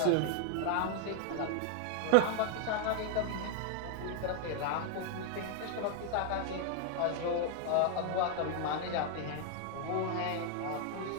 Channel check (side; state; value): both; different; correlation 0.01